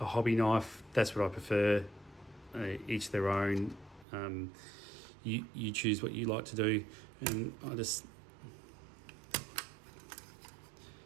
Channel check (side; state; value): left; drops out; at 4.0 s